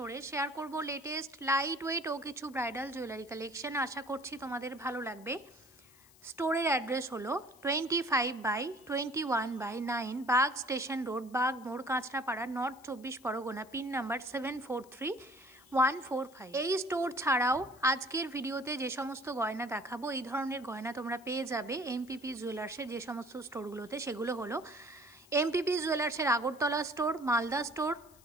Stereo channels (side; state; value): left; noise; hiss, 26 dB below the sound